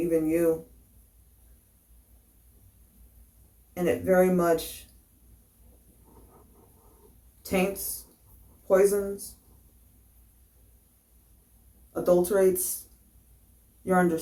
you. And it very much taints poisons, adulterates your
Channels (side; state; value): both; identical; correlation 1.00